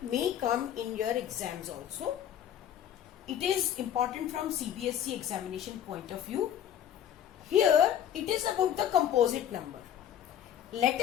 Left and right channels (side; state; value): right; quieter; 10.1 dB